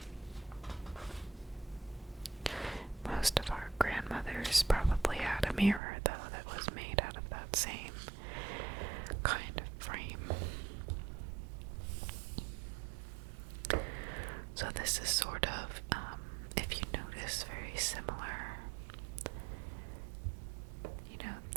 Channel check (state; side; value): drops out; left; at 5.8 s